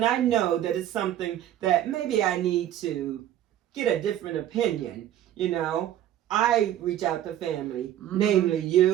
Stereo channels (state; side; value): quieter; left; 11.8 dB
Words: I know that it's something that maybe I need to get a different opinion, I reach out to family, namely